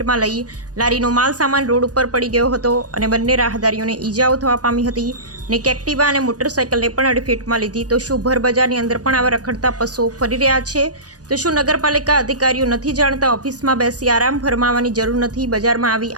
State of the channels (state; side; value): late; left; 0.68 ms